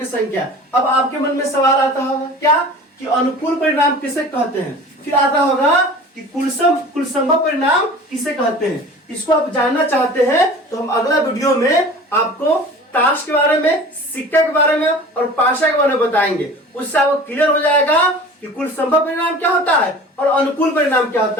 संख्या। अब आपके मन में सवाल आता होगा क्या कि अनुकूल परिणाम किसे कहते हैं, फिर आता होगा कि कुल संभव परिणाम किसे कहते हैं। इसको आप जानना चाहते हैं तो हम अगला वीडियो में आपको ताश के बारे में, सिक्का के बारे में और पाशा के बारे में बताएंगे। उससे आपको क्लियर हो जाएगा कि कुल संभव परिणाम क्या होता है और अनुकूल परिणाम क्या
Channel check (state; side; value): normal; both; correlation 0.41